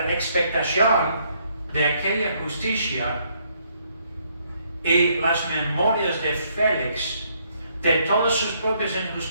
expectación de aquella justicia y las memorias de Félix de todas sus propias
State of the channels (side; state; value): both; inverted; correlation -0.70